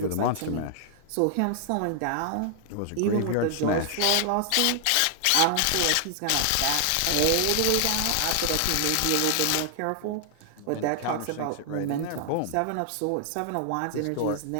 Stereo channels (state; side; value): different; both; correlation 0.00